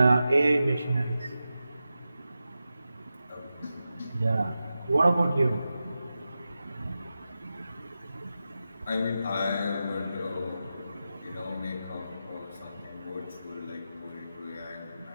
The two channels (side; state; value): both; inverted; correlation -0.92